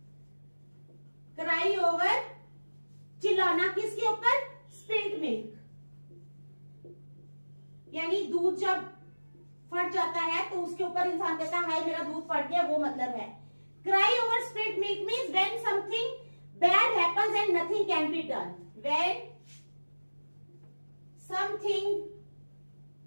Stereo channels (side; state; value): both; inverted; correlation -1.00